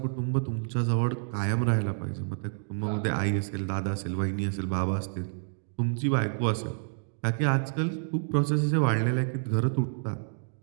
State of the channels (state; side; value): silent; left; digital silence